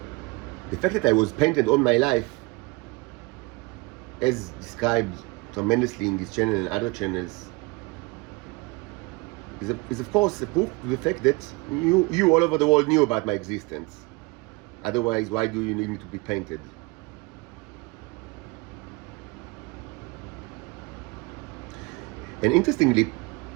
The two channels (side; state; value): left; quieter; 25.3 dB